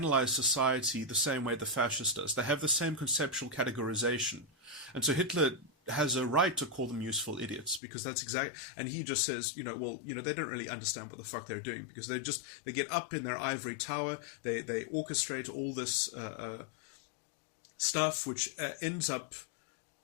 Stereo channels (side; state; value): right; drops out; at 7.8 s